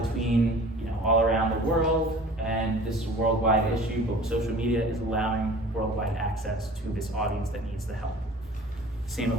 between all around the world, and this is a worldwide issue, but social media is allowing worldwide access to this audience that needs the help. Same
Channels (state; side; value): normal; both; correlation 0.44